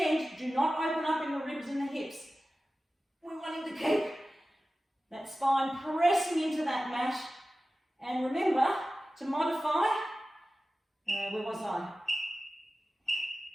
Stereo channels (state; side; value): normal; both; correlation 0.95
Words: do not open up in the ribs and the hips. We're wanting to keep that spine pressing into that mat. And remember to modify, where was I?